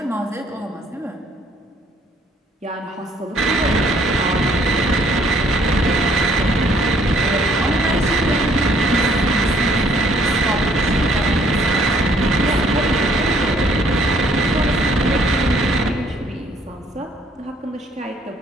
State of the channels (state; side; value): normal; both; correlation 0.63